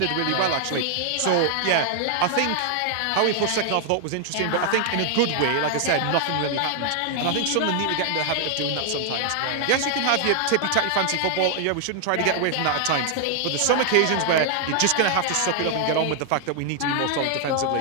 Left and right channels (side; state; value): both; different; correlation 0.00